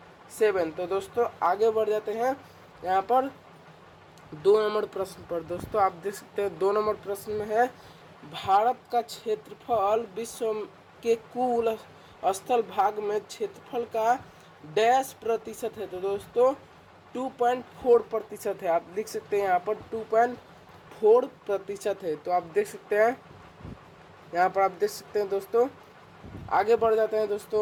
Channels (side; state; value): both; identical; correlation 1.00